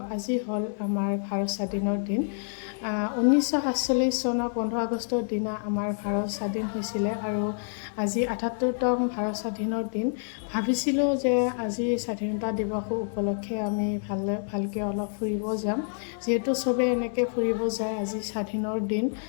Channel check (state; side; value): silent; right; digital silence